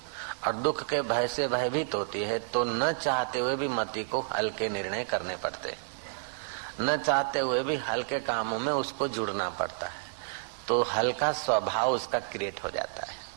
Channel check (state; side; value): silent; left; 58 dB below the other